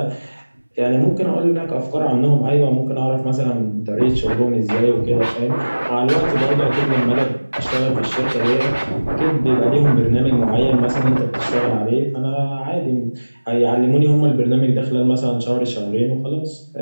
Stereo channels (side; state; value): both; inverted; correlation -1.00